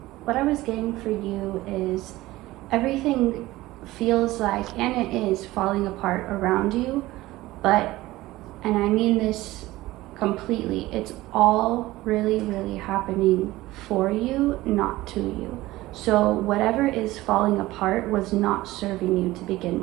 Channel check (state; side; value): quieter; left; 17.8 dB